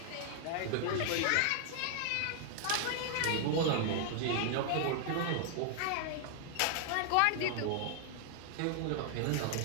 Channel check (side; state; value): both; different; correlation 0.00